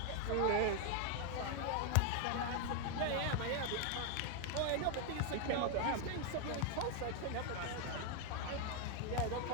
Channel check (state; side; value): different; both; correlation 0.01